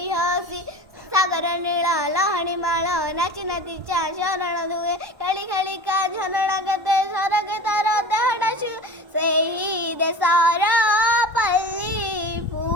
हसी सागर नीला लहणी माळ नाची नातीच्या शरण धुए खेळी खेळी का झनडा गते सरग तर देहडा सेही देशर पल्ली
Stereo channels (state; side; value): late; left; 1.1 ms